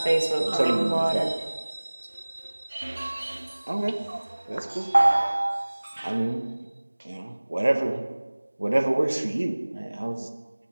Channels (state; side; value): inverted; both; correlation -1.00